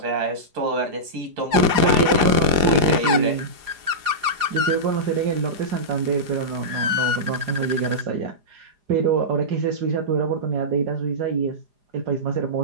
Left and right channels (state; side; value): late; left; 4.9 ms